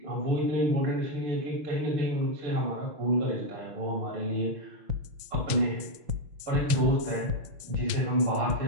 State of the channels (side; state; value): left; late; 5.8 ms